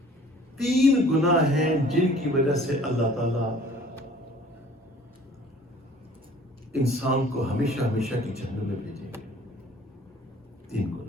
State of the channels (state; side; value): normal; both; correlation 0.51